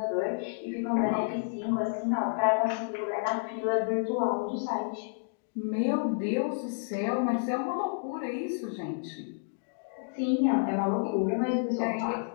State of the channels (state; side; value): silent; right; digital silence